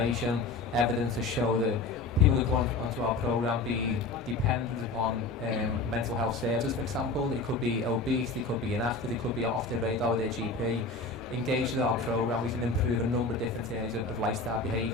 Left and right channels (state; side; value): quieter; right; 3.4 dB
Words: evidence to show that people who go onto our programme be dependent upon mental health services, for example. They could be obese, they could be inactive, they could be off the radar with their GP. Engaged with our programme, we can improve a number of different areas of lifestyle